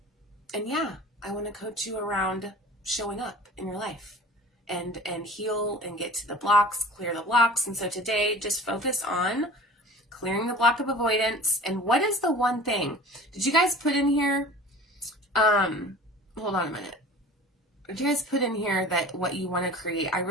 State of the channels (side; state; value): both; normal; correlation 0.42